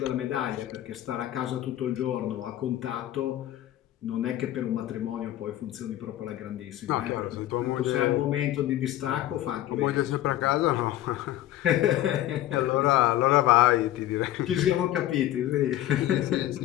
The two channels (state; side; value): quieter; right; 13.7 dB